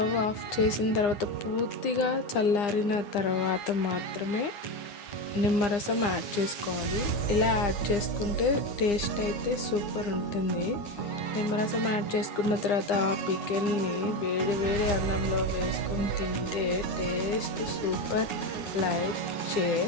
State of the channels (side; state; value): right; late; 9.8 ms